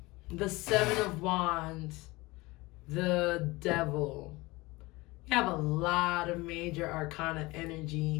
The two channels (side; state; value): right; quieter; 22.1 dB